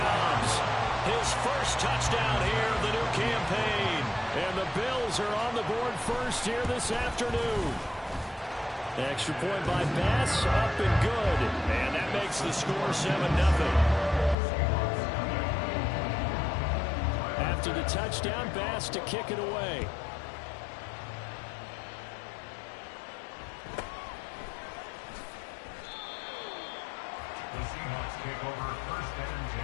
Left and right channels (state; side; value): drops out; right; at 14.4 s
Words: his first touchdown here of the new campaign. And the Bills are on the board first here this afternoon. Extra point by Bass, up and good. And that makes the score 7-0. After the touchdown, Bass to kick it away. The Seahawks take over 1st and 10